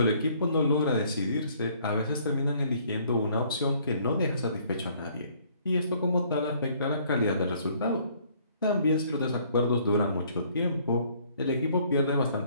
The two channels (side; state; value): both; inverted; correlation -0.61